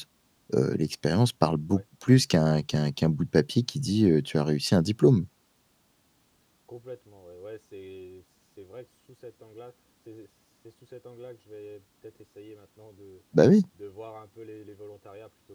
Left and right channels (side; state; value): both; identical; correlation 1.00